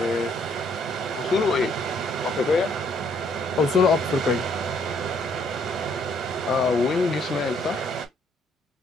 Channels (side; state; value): both; normal; correlation 0.67